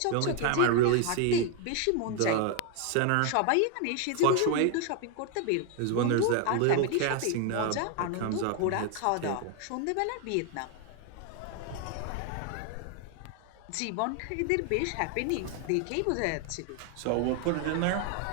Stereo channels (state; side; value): different; both; correlation 0.01